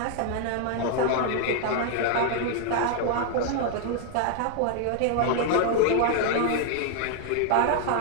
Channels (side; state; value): both; different; correlation 0.00